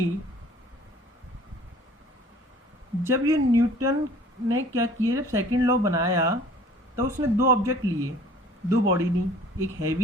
जब ये न्यूटन ने क्या किया, जब सेकंड लॉ बनाया तो उसने दो ऑब्जेक्ट लिए, दो बॉडी ली, एक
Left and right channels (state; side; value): normal; both; correlation 0.51